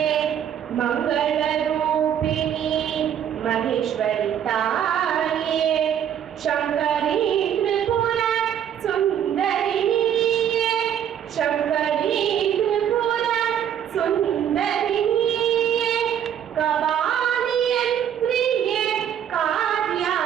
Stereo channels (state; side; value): quieter; left; 9.5 dB